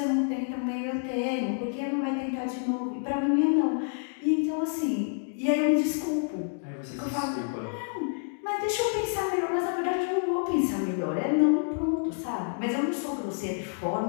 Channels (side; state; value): right; silent; digital silence